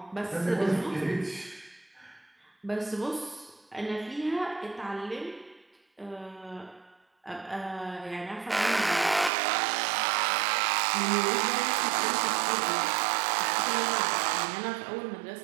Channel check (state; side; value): drops out; left; at 9.3 s